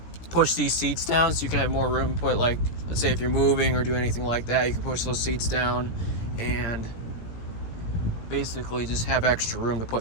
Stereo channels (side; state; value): right; late; 17 ms